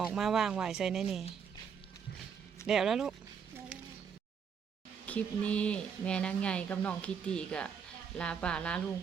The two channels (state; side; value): quieter; left; 6.9 dB